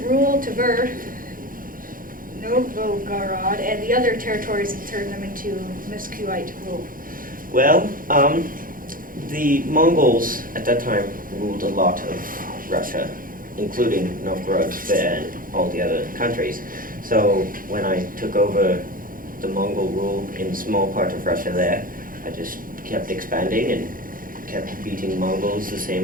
rule Tver, Novgorod, and the other territories and turn them into Muscovite rule? Well, the Mongols at that time ruled a lot of Russia, including Novgorod and all the other countries. So when I took over the Mongol rule in a small part of Russia there, I just kept expanding and kept beating Mongols the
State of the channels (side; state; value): left; late; 0.40 ms